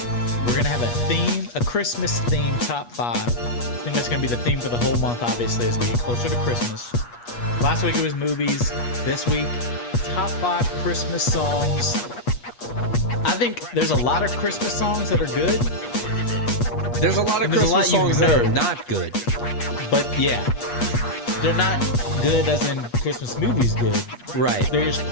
we're going to have a Christmas theme top 5. I think that's going to be the theme for the whole month, obviously, as we get closer to Christmas. Last week it was movies. This week, top 5 Christmas songs. I think there's a lot of Christmas songs that are good. There's a lot of Christmas songs that are not good. But yeah, they're not good as in Christmas movies good. Right. They're just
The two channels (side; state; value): right; late; 8.4 ms